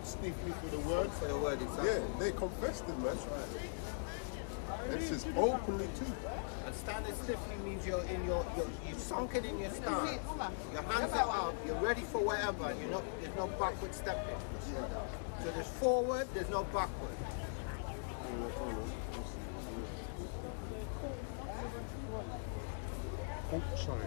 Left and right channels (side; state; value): right; silent; digital silence